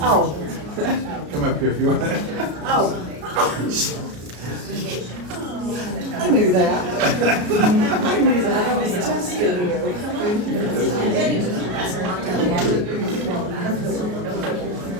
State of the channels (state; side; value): late; left; 33 ms